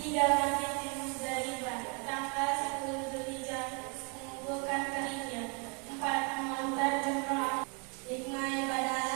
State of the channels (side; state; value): left; quieter; 34.4 dB